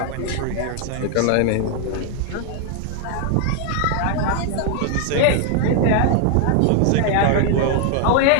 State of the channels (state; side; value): different; both; correlation 0.00